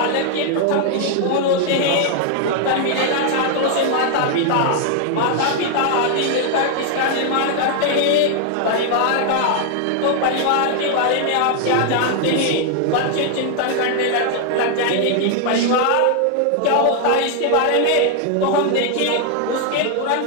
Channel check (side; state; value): both; different; correlation 0.00